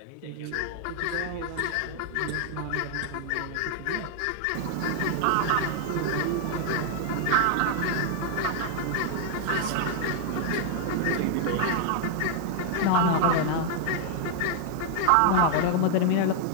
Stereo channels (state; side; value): different; both; correlation 0.00